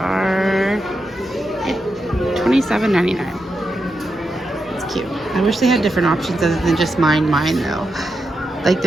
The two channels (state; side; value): normal; both; correlation 0.86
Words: $27.99. It's cute. I wish they had different options other than just mine though. Like